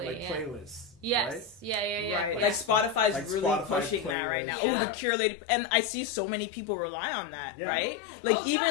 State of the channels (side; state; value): right; drops out; at 4.2 s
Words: like playlists. Yes. Right? Yeah. Right. Like Spotify's like really Spotify pushing that right now. Yeah. Curated, and I see so many people rely on that. Right. Like even